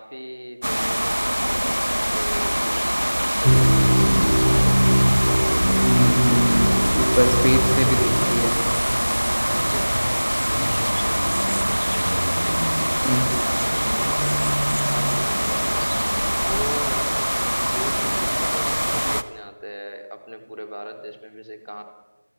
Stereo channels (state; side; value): inverted; both; correlation -1.00